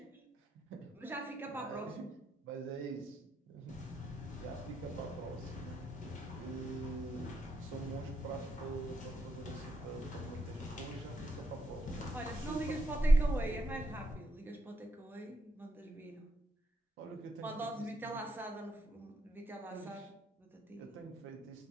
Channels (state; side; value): normal; both; correlation 0.79